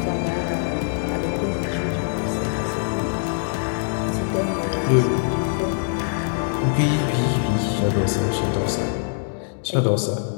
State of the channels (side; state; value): right; silent; digital silence